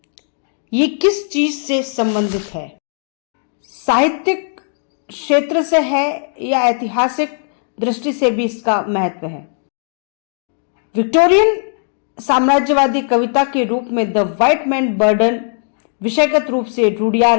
ये किस चीज से संबंधित है, साहित्यिक क्षेत्र से है या ऐतिहासिक दृष्टि से भी इसका महत्व है। विक्टोरियन साम्राज्यवादी कविता के रूप में द व्हाइट मैन बर्डन विषयगत रूप से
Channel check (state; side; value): silent; right; digital silence